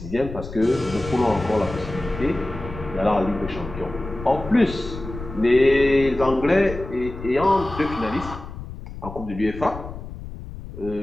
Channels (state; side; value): noise; left; rumble, 11 dB below the sound